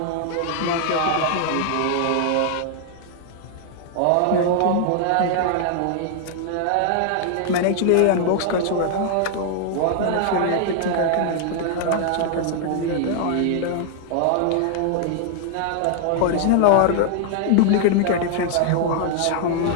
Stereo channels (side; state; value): both; different; correlation 0.00